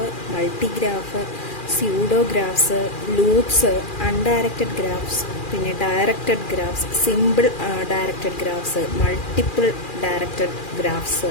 multigraph, pseudographs, loops, undirected graphs, പിന്നെ directed graphs, simple directed graphs, multiple directed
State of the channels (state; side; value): late; right; 2.4 ms